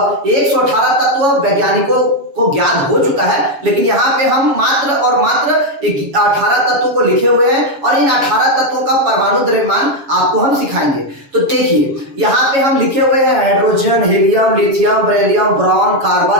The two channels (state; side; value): late; left; 7.2 ms